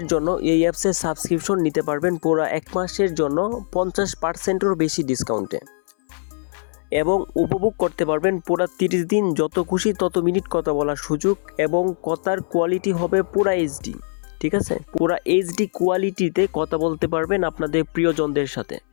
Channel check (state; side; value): silent; right; 60 dB below the other